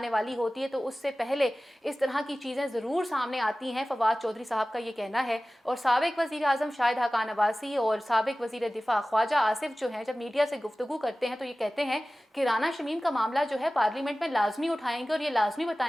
वाली होती है तो उससे पहले इस तरह की चीज़ें ज़रूर सामने आती हैं। फवाद चौधरी साहब का ये कहना है। और साबिक वज़ीर आज़म शाहिद हक़ान अब्बासी और साबिक वज़ीर दिफा ख्वाजा आसिफ जो हैं, जब मीडिया से गुफ्तगू करते हैं तो ये कहते हैं कि राना शमीम का मामला जो है पार्लियामेंट में लाजमी उठाएंगे और ये लाजमी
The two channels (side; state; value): both; normal; correlation 0.97